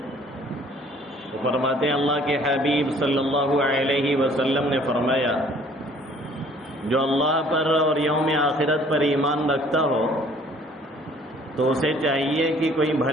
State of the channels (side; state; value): both; normal; correlation 0.56